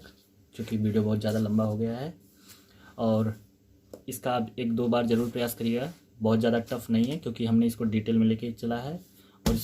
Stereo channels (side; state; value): both; identical; correlation 1.00